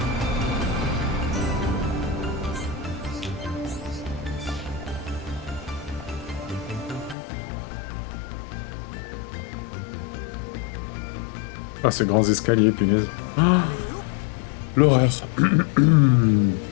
Ah, ces grands escaliers, punaise. Ah, l'horreur. Est-ce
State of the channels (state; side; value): drops out; right; at 7.2 s